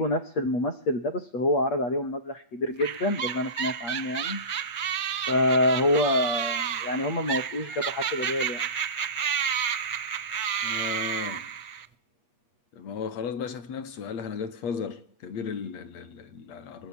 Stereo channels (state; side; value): late; right; 8.4 ms